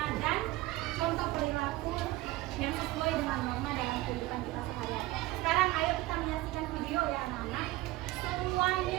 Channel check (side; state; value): left; quieter; 18.5 dB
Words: dan contoh perilaku yang sesuai dengan norma dalam kehidupan kita sehari-hari. Sekarang ayo kita menyaksikan video ya anak-anak.